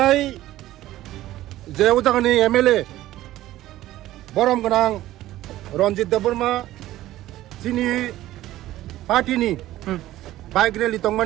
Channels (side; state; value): left; quieter; 15.0 dB